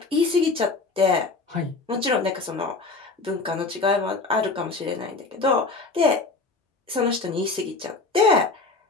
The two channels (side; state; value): right; quieter; 3.8 dB